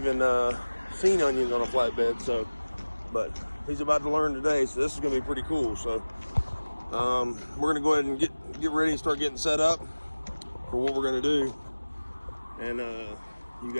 seen onions on a flatbed. So, but he's about to learn today, so this is going to be pretty cool. So we're going to go ahead and get ready and start getting set up for what we're going to do, and you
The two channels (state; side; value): inverted; both; correlation -1.00